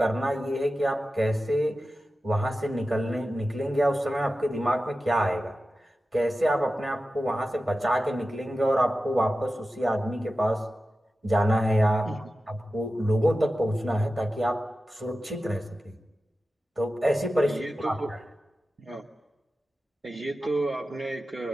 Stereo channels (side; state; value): both; normal; correlation 0.93